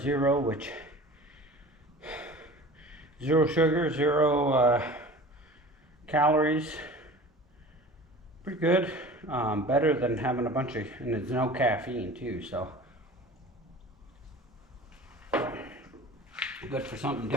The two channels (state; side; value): normal; both; correlation 0.40